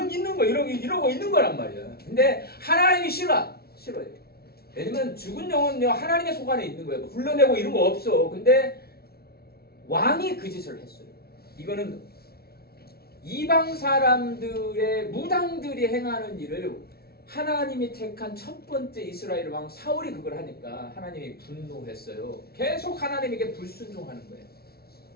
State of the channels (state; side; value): late; right; 0.45 ms